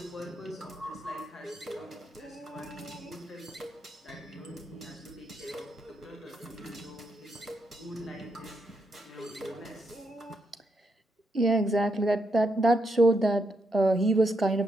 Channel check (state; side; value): normal; both; correlation 0.81